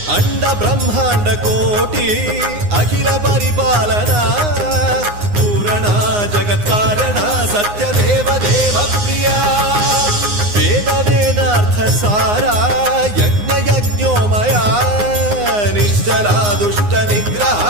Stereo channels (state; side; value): late; left; 9.7 ms